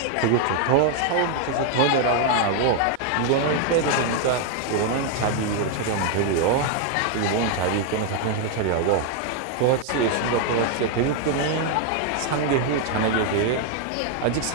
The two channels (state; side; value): different; both; correlation 0.00